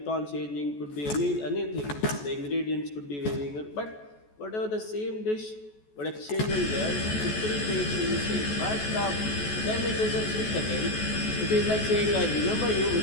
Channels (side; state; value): right; late; 14 ms